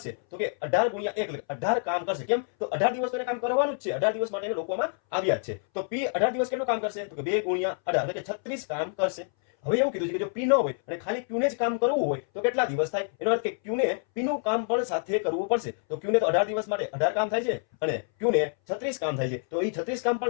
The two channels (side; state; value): right; silent; 60 dB below the other